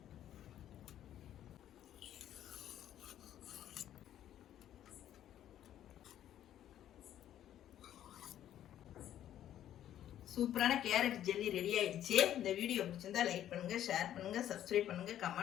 சூப்பரான கேரட் ஜெல்லி ரெடி ஆயிடுச்சு. இந்த வீடியோ பிடிச்சிருந்தா லைக் பண்ணுங்க, ஷேர் பண்ணுங்க, சப்ஸ்கிரைப் பண்ணுங்க,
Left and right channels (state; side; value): quieter; right; 11.4 dB